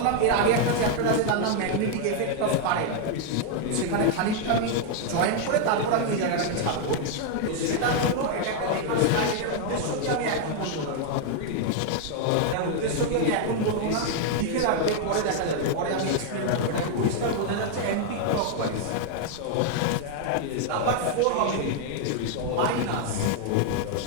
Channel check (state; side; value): different; both; correlation 0.00